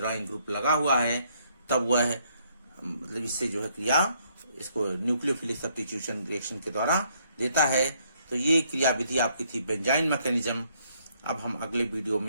ग्रुप लगा हुआ है, तब वह मतलब इससे जो है क्रिया इसको न्यूक्लियोफिलिक सब्स्टिट्यूशन रिएक्शन के द्वारा देता है। तो ये क्रियाविधि आपकी थी बेंजाइन मैकेनिज्म। अब हम अगले वीडियो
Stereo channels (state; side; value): inverted; both; correlation -0.70